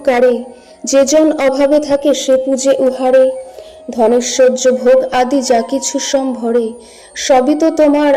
যে জন অভাবে থাকে সে পূজে উহারে। ধনেশ্বর্য ভোগ আদি যা কিছু সম্ভরে, সবই তো তোমার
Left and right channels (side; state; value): both; identical; correlation 1.00